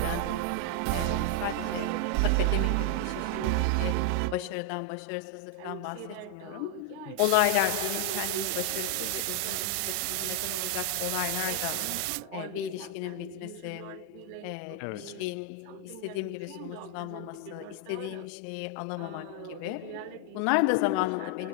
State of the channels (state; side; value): different; both; correlation 0.00